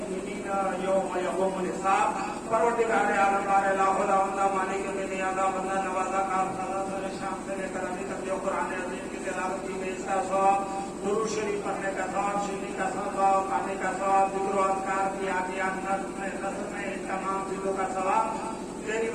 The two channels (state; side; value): identical; both; correlation 1.00